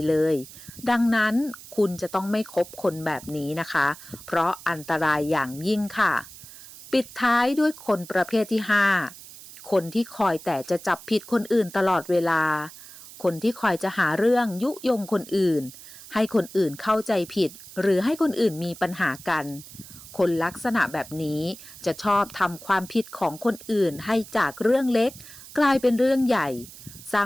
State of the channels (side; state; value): right; noise; hiss, 17 dB below the sound